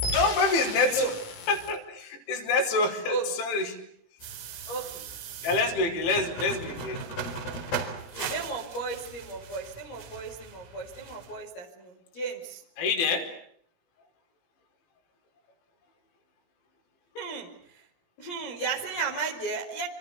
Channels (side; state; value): right; late; 18 ms